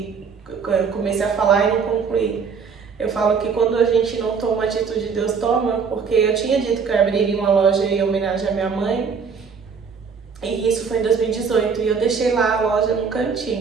eu comecei a falar e não concluí. Eu falo que quando a gente não toma a atitude, Deus toma, porque eu tinha dito que eu abriria uma loja em homenagem à minha mãe, e isso foi em 2018, e eu deixei lá a loja no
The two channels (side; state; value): left; quieter; 5.8 dB